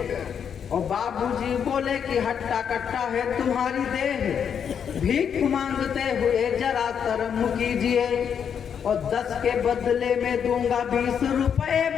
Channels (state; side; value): quieter; right; 7.7 dB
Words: और बाबूजी बोले कि हट्टा कट्टा है तुम्हारी देह, भीख मांगते हुए जरा शर्म कीजिए, और 10 के बदले में दूंगा 20 रुपए